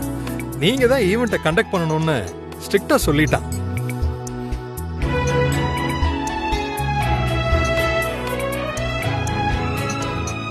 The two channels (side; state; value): both; identical; correlation 1.00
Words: நீங்க தான் ஈவெண்ட்டை கண்டக்ட் பண்ணணும்னு ஸ்ட்ரிக்ட்டா சொல்லிட்டான்.